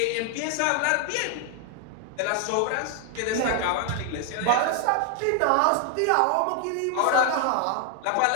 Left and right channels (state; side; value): different; both; correlation 0.00